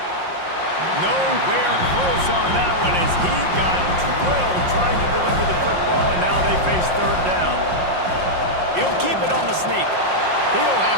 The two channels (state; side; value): late; left; 5.6 ms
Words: Nowhere close on that one as he got drilled trying to deliver the football, and now they face 3rd down. He'll keep it on the sneak. He'll